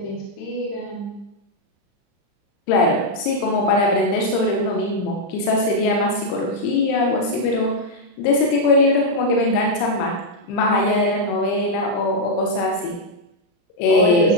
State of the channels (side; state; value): right; late; 35 ms